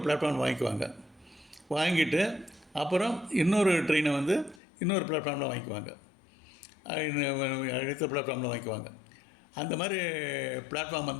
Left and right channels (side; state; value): right; drops out; at 4.6 s